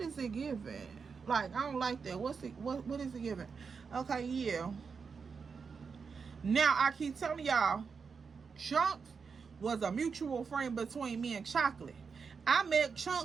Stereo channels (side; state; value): left; quieter; 5.5 dB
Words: is it giving? Like, I don't like that. What is it giving? Okay, yeah. Now, I keep telling y'all, Chunks was a mutual friend between me and Chocolate. I met